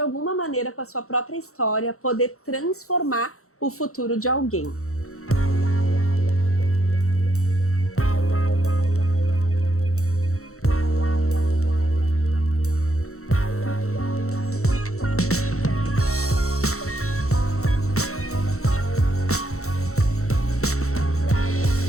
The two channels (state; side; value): late; right; 0.64 ms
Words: alguma maneira, com a sua própria história, poder transformar o futuro de alguém.